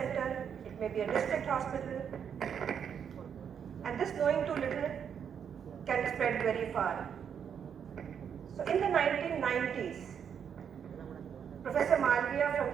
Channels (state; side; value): quieter; left; 7.8 dB